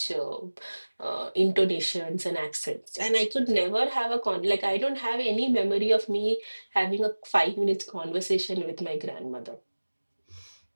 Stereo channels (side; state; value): both; inverted; correlation -1.00